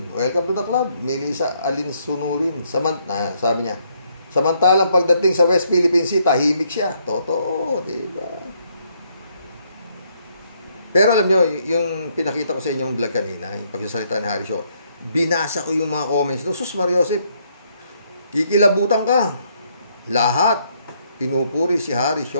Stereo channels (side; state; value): both; inverted; correlation -0.71